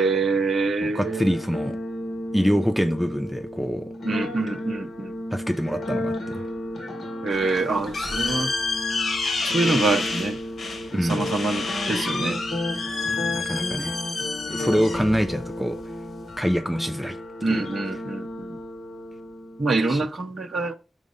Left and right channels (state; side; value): normal; both; correlation 0.86